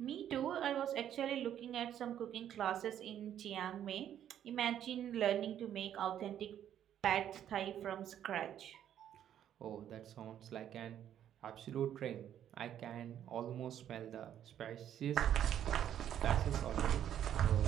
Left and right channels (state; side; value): quieter; left; 10.4 dB